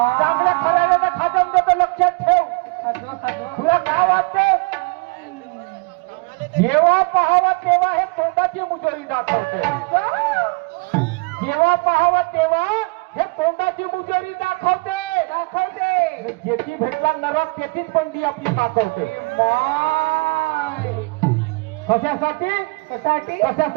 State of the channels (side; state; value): left; quieter; 28.7 dB